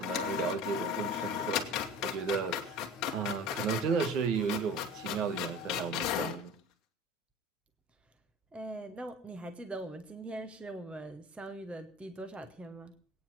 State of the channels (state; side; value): normal; both; correlation 0.39